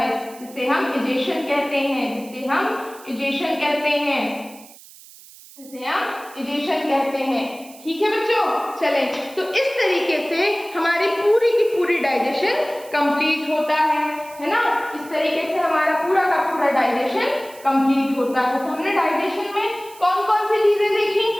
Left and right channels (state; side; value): noise; right; hiss, 21 dB below the sound